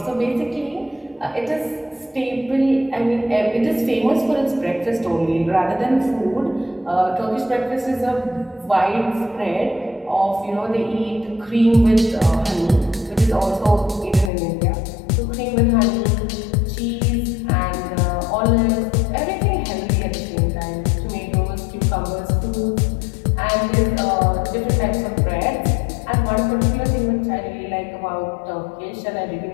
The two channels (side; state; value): right; drops out; at 14.3 s